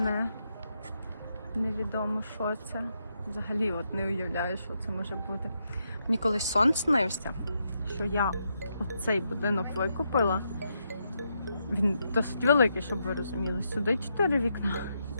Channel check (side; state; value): both; inverted; correlation -0.81